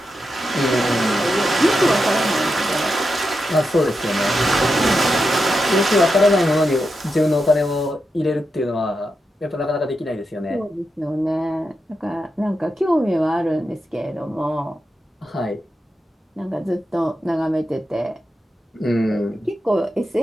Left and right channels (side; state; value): both; normal; correlation 0.87